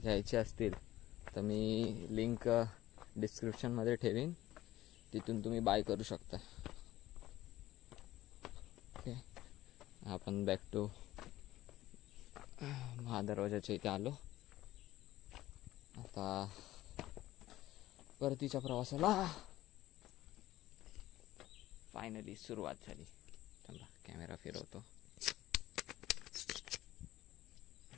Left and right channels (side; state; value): right; quieter; 15.5 dB